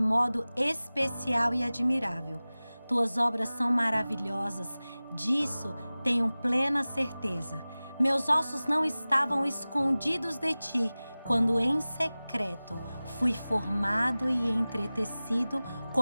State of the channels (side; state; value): both; inverted; correlation -0.98